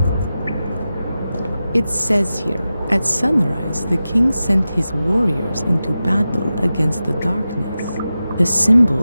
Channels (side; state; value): both; inverted; correlation -0.93